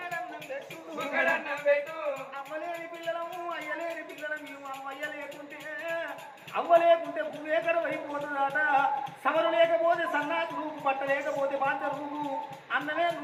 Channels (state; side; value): identical; both; correlation 1.00